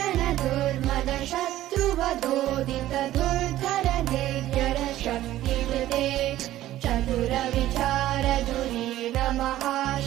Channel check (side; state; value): left; quieter; 14.2 dB